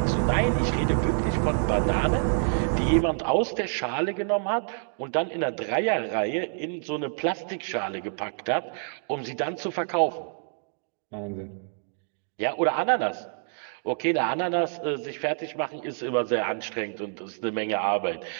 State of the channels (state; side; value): silent; left; digital silence